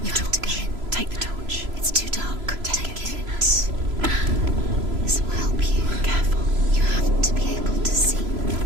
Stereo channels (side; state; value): left; late; 3.0 ms